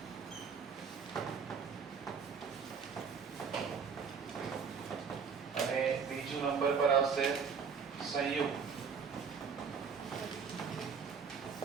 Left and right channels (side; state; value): left; quieter; 6.1 dB